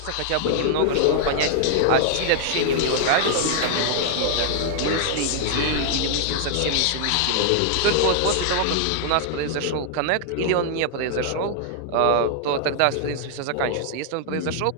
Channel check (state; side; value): different; both; correlation -0.01